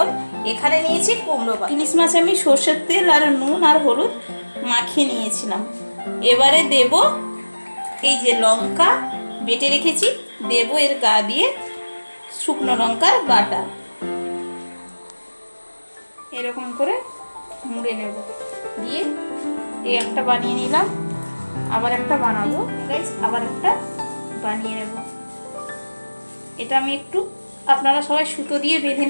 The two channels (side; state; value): both; inverted; correlation -1.00